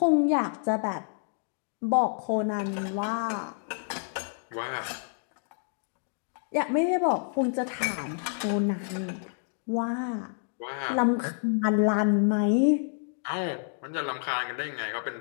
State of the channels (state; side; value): silent; right; digital silence